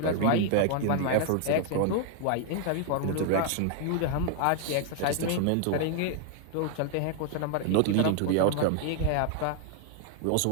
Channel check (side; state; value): both; different; correlation 0.00